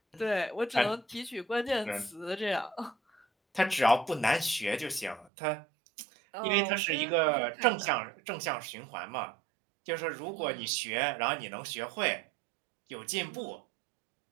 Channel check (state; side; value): drops out; left; at 5.3 s